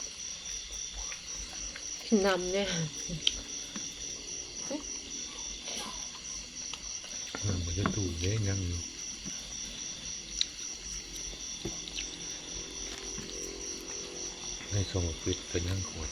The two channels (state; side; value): identical; both; correlation 1.00